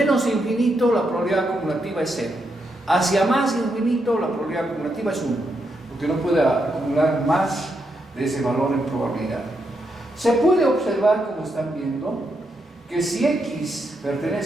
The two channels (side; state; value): both; normal; correlation 0.81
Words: infinito, la probabilidad acumulativa es 0. Hacia más infinito, la probabilidad acumulativa es 1, porque no puede acumular más de ese valor en probabilidad. Se puede observar, como están viendo, que si x